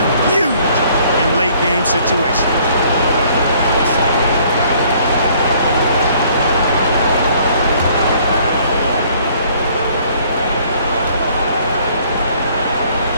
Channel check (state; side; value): inverted; both; correlation -0.60